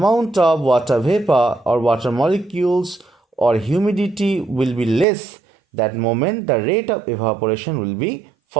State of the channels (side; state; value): left; drops out; at 5.1 s